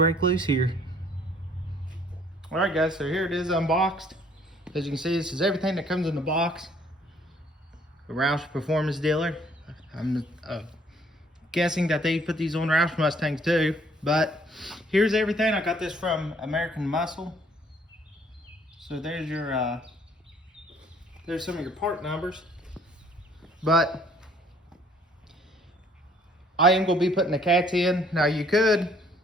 loose here. All right guys, so here it is unboxed. As you can see, this is everything that comes in the box. A Roush Performance dealer. I'm guessing that they put these on Roush Mustangs too, but here's everything. I got this from American Muscle. So there's your, there's some of your part numbers. But I am gonna be putting the cats in. Now you could,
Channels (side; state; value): both; normal; correlation 0.61